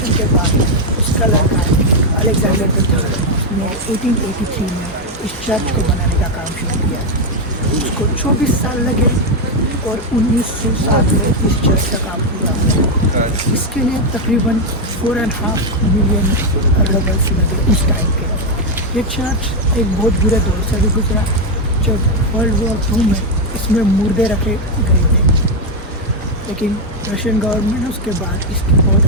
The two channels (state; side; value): normal; both; correlation 0.03